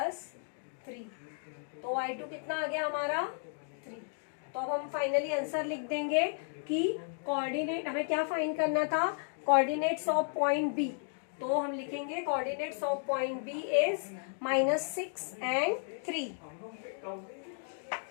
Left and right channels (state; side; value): silent; right; digital silence